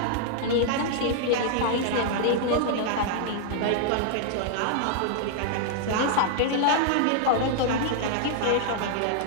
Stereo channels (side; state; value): both; different; correlation -0.01